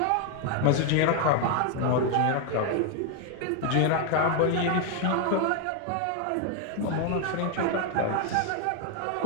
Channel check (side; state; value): both; different; correlation 0.01